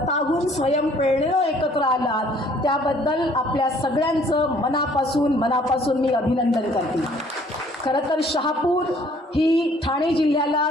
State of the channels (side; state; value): both; normal; correlation 0.59